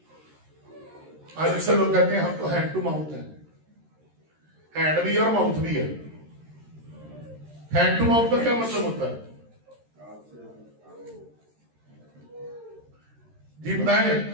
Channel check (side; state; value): left; late; 13 ms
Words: आज अक्सर लोग कहते हैं हम तो हैंड टू माउथ है। हैंड भी है और माउथ भी है। हैंड टू माउथ का क्या मतलब होता है जी बताएं?